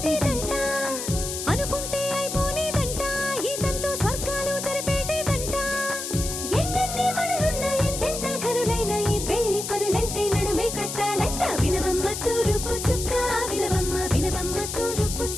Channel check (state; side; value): noise; left; hiss, 5 dB below the sound